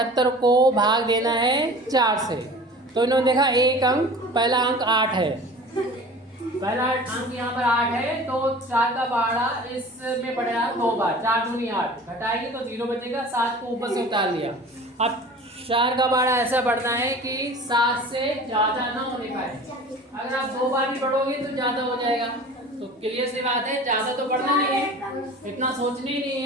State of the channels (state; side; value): normal; both; correlation 0.41